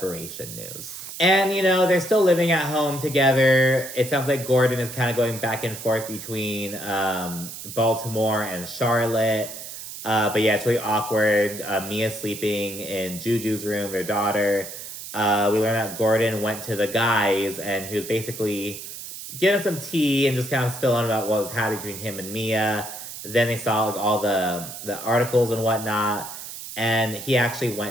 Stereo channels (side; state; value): right; noise; hiss, 10 dB below the sound